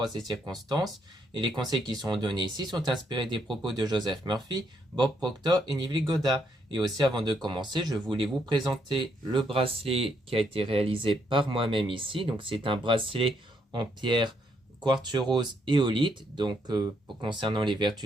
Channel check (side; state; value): both; normal; correlation 0.75